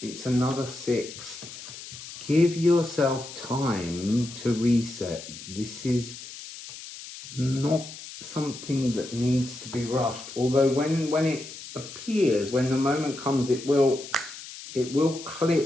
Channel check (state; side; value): noise; left; hiss, 13 dB below the sound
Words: It's another 6. Give yourself time to reset. This is not something that needs to be rushed. Although when it appears, when the moment comes, it will